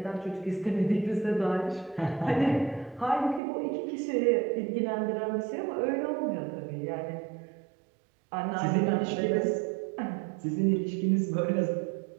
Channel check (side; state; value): left; drops out; at 3.4 s